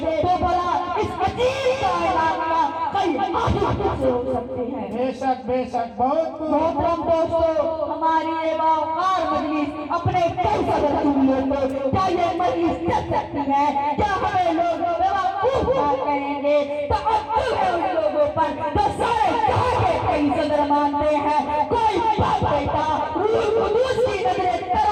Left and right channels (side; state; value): both; identical; correlation 1.00